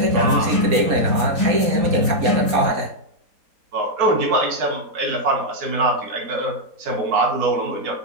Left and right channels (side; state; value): left; late; 4.2 ms